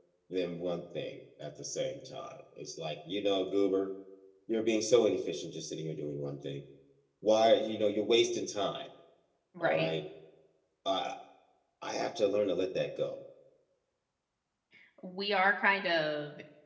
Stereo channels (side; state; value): both; identical; correlation 1.00